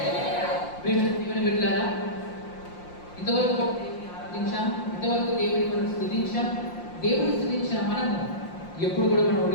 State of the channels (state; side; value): late; right; 5.7 ms